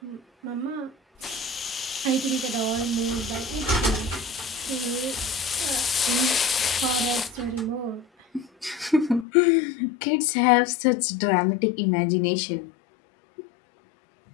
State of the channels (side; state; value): right; drops out; at 9.2 s